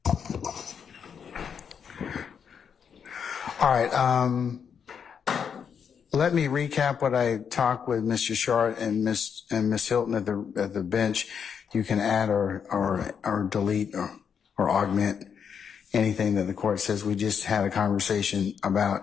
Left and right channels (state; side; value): quieter; right; 7.2 dB